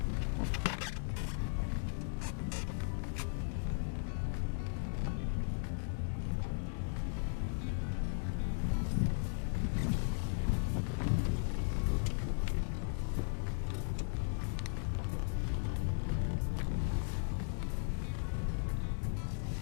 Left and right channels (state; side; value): silent; right; digital silence